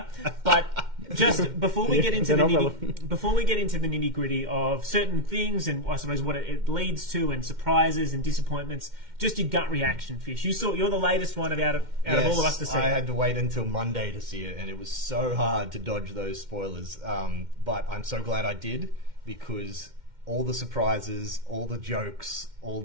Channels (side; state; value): left; late; 2.1 ms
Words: But just before we get into the nitty gritty of certain things, and I suppose what it leads to, and surprises and disappointments, just your gut reaction, Fish. You're the latest one out of all of us to see. I had to wait until Monday to see it, and it was so hard to dodge those spoilers. But I'm so glad I did, because all the surprises, all the jokes, all